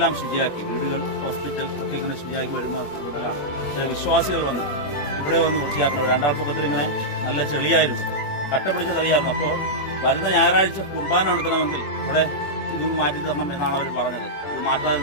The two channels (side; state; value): right; late; 21 ms